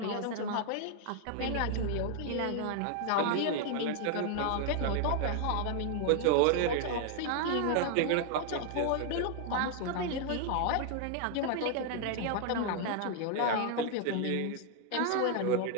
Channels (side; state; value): both; different; correlation 0.00